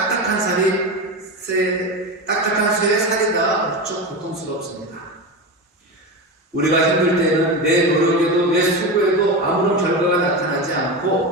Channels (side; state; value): both; normal; correlation 0.20